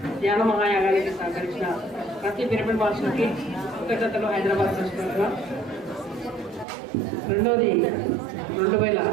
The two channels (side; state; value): left; drops out; at 6.7 s